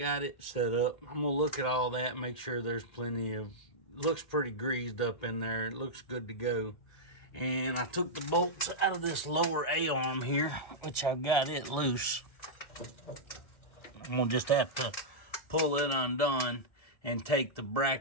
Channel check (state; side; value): late; right; 1.7 ms